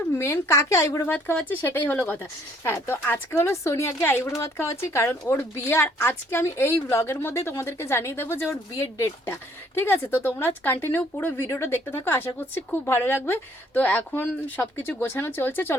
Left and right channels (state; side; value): normal; both; correlation 0.63